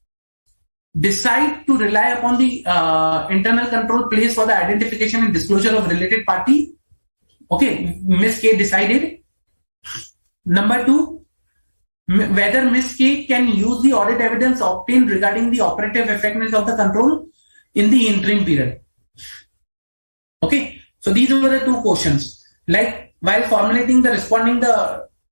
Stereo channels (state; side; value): inverted; both; correlation -1.00